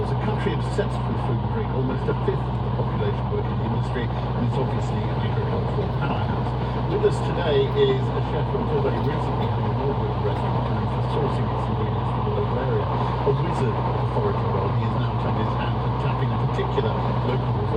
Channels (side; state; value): both; identical; correlation 1.00